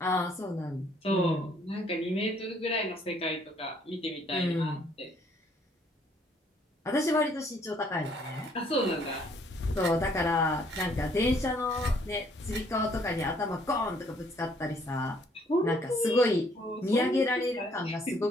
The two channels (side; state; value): both; normal; correlation 0.64